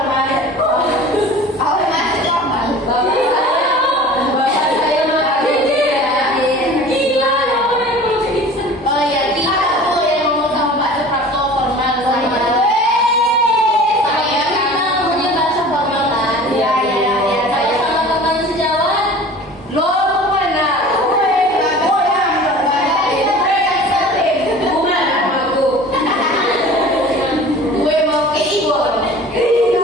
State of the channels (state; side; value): normal; both; correlation 0.42